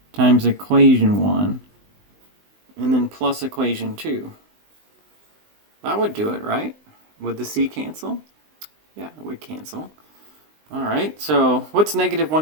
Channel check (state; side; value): late; left; 19 ms